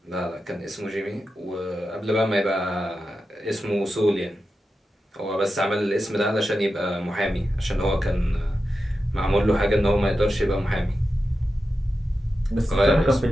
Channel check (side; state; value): both; normal; correlation 0.91